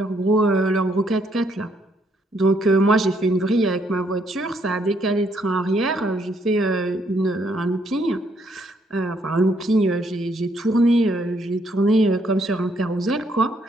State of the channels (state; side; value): normal; both; correlation 0.71